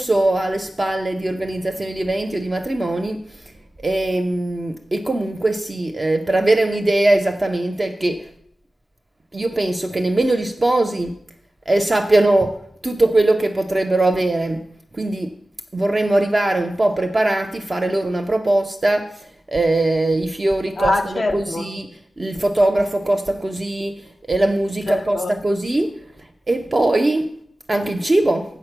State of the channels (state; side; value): normal; both; correlation 0.96